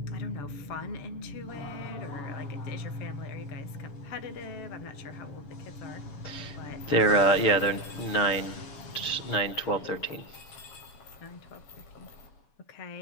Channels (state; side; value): late; right; 7.0 ms